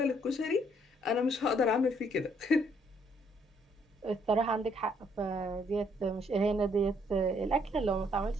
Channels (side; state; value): both; normal; correlation 0.68